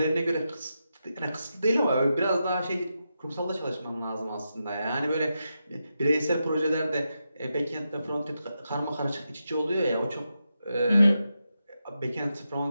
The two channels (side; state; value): both; inverted; correlation -0.87